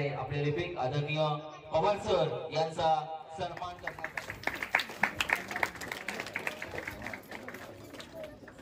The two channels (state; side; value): identical; both; correlation 1.00